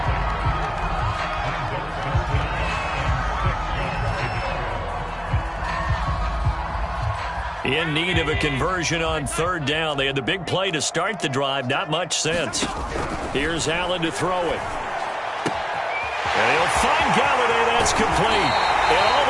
In need of a conversion on third down. They had the big play to start the drive. Not much sense. Here's Allen to throw it. And he'll find Galladay. That's complete. And all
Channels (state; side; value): identical; both; correlation 1.00